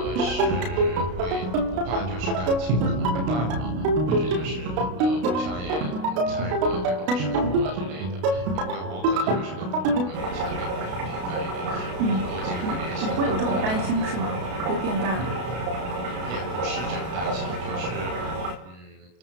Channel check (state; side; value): late; left; 33 ms